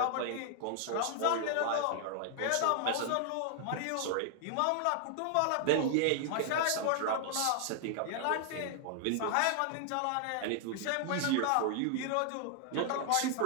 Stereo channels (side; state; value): both; different; correlation 0.00